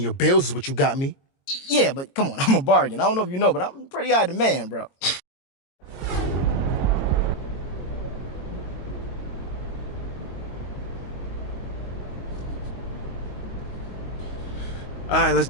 bills is what you got me. Yeah, but come on, I'm a bargain. I don't know if you know, but I'm pretty high demand, bro. All right, let's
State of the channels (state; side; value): late; right; 22 ms